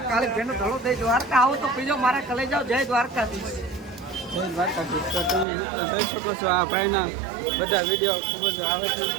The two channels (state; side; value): drops out; left; at 5.5 s